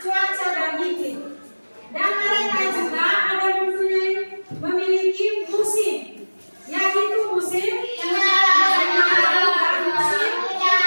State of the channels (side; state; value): both; inverted; correlation -1.00